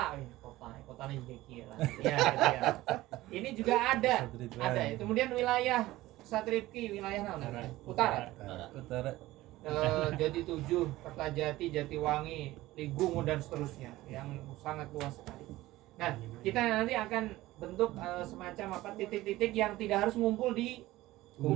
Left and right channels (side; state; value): left; quieter; 17.3 dB